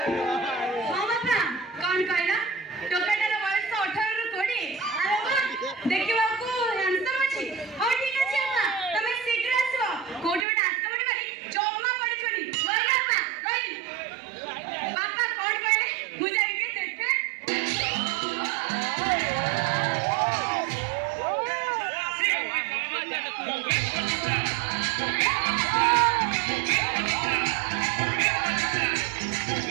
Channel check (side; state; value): left; drops out; at 10.5 s